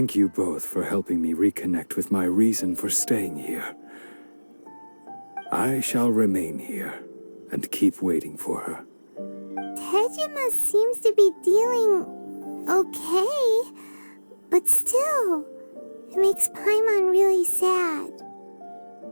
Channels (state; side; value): inverted; both; correlation -1.00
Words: you both for helping me reconnect with my reason for staying here. I shall remain here and keep waiting for her. Tejima seems to be dealing okay, but still, it makes Paimon really sad.